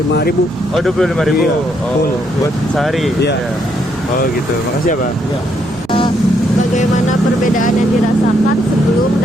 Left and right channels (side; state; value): right; noise; rumble, 20 dB below the sound